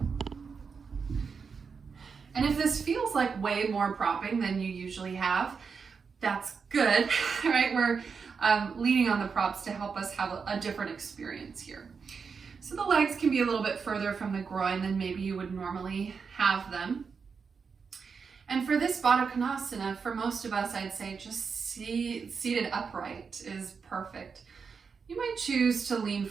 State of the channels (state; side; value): quieter; left; 5.6 dB